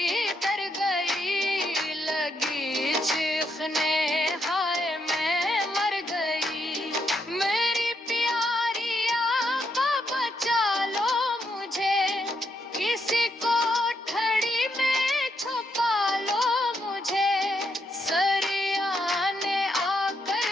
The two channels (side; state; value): both; normal; correlation 0.78